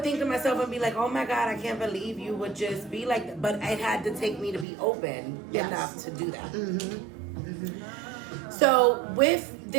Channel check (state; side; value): drops out; left; at 4.7 s